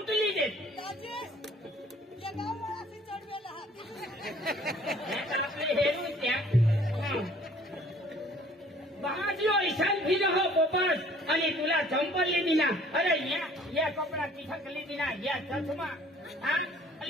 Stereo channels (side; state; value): both; normal; correlation 0.55